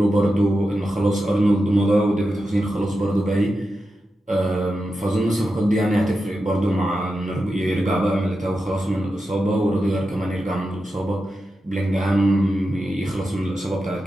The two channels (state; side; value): normal; both; correlation 0.90